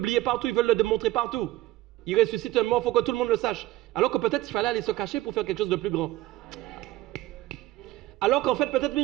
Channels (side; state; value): left; quieter; 16.6 dB